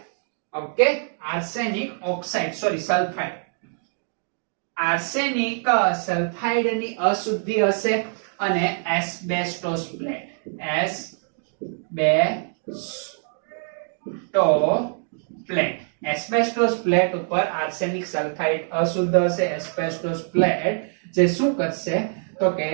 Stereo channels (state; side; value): silent; left; digital silence